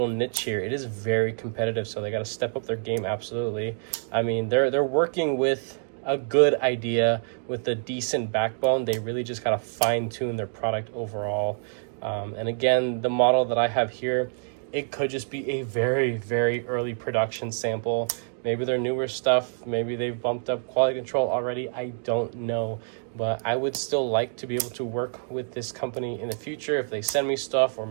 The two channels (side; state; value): left; silent; digital silence